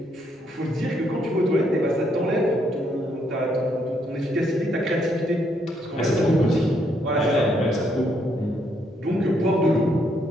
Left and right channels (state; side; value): normal; both; correlation 0.74